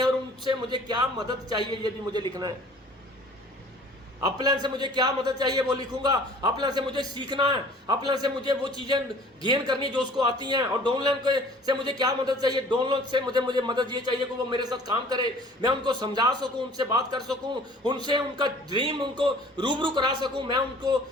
और उनसे मुझे क्या मदद चाहिए ये भी मुझे लिखना है। अपलाइन से मुझे क्या मदद चाहिए वो लिखूंगा, अपलाइन से मुझे सीखना है, अपलाइन से मुझे वो चीजें गेन करनी जो उसको आती हैं, और डाउनलाइन से मुझे क्या मदद चाहिए, डाउनलाइन से मुझे मदद ये चाहिए कि वो मेरे साथ काम करे, मैं उनको समझा सकूं, उनसे बात कर सकूं, उनसे उनका ड्रीम उनको रूबरू करा सकूं। मैं उनको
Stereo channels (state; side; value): normal; both; correlation 0.50